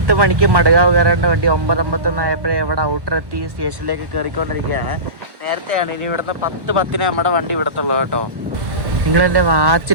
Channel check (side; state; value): left; late; 1.1 ms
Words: മണിക്ക് മടകാവ് കയറേണ്ട വണ്ടി 9:51 ആയപ്പോഴേ ഇവിടെ ഔട്ടർ എത്തി സ്റ്റേഷനിലേക്ക് കയറിക്കൊണ്ടിരിക്കുകയാണ്. നേരത്തെയാണ്, ഇനി ഇവിടുന്ന് 10:10 നമ്മുടെ വണ്ടി ഇവിടത്തുള്ളൂ കേട്ടോ. നിങ്ങളെൻ്റെ